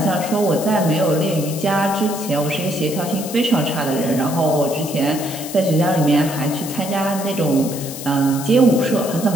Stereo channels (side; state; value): left; noise; hiss, 10 dB below the sound